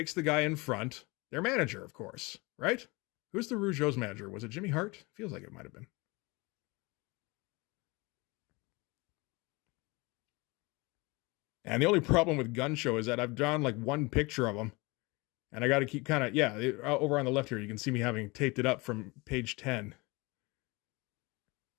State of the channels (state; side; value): quieter; right; 25.4 dB